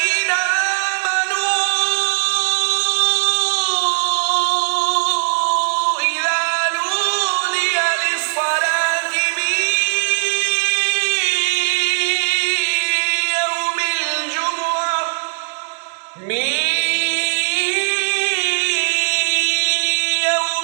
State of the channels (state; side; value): silent; left; digital silence